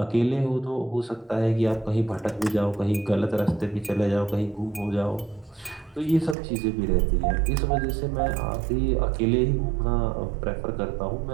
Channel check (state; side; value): drops out; left; at 6.4 s